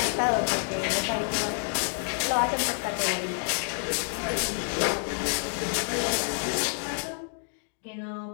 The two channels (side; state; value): right; silent; 59 dB below the other